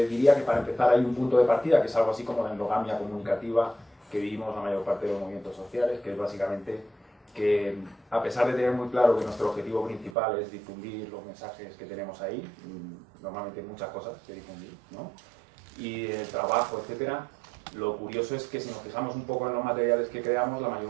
diría que para empezar hay un punto de partida, que es algo así como la endogamia comunicativa que vivimos la mayor parte de los movimientos sociales, que es básicamente que, a pesar de tener muy claro que nuestro objetivo principal es difundir los mensajes que tenemos ahí, normalmente hay muchas cosas que difundir, ¿no? Y el trabajo, etcétera, lo curioso es que si nos fijamos un poco en los materiales que creamos, la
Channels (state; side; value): drops out; left; at 10.1 s